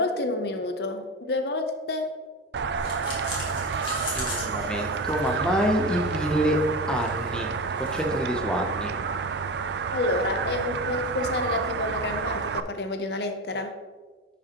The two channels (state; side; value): normal; both; correlation 0.23